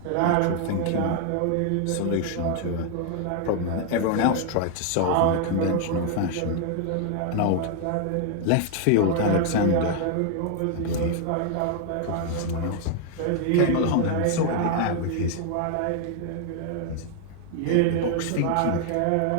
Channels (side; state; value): both; different; correlation 0.00